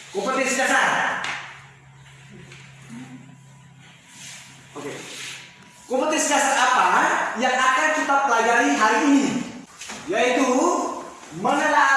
kompetensi dasar. Oke. Kompetensi dasar apa yang akan kita pelajari hari ini? Yaitu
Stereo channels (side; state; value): both; identical; correlation 1.00